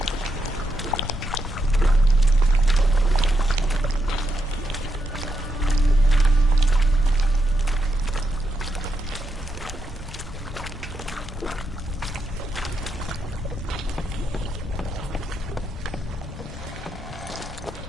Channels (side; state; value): both; normal; correlation 0.82